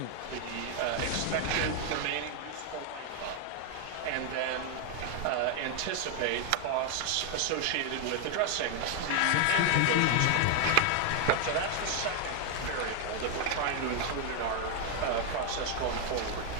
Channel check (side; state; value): both; different; correlation 0.00